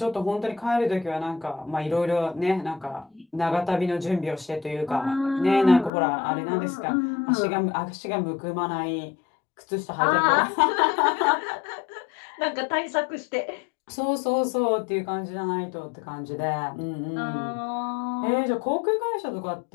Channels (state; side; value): drops out; right; at 5.9 s